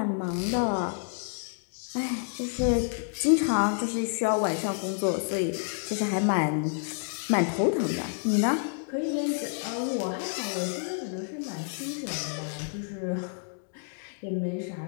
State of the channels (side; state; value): right; silent; digital silence